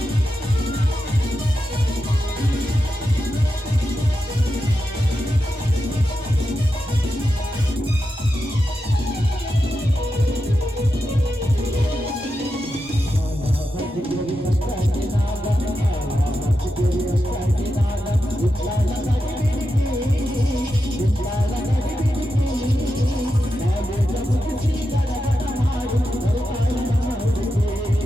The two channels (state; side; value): normal; both; correlation 0.89